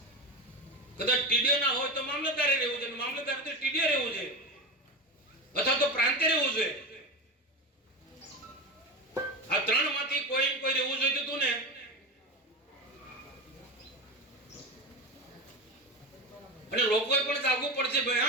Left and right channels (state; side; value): normal; both; correlation 0.21